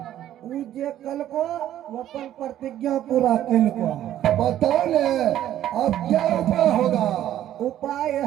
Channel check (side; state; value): left; quieter; 12.0 dB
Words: उ जे कल को वो अपन प्रतिज्ञा पूरा कल को। बताओ ने अब क्या उपाय होगा? उपाय